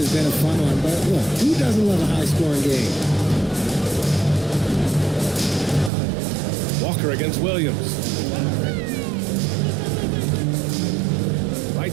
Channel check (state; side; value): drops out; left; at 5.9 s